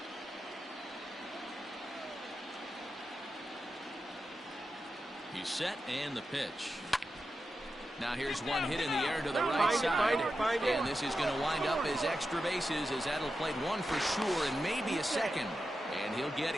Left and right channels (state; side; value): normal; both; correlation 0.90